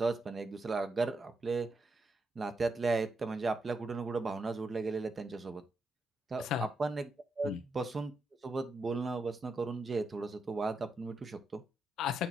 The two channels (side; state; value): both; normal; correlation 0.84